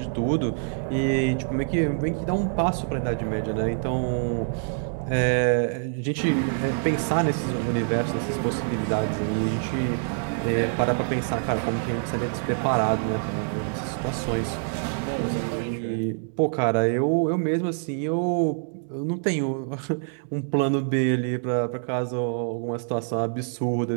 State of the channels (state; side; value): silent; left; digital silence